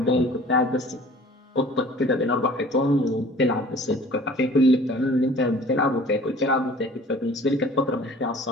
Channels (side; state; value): both; normal; correlation 0.48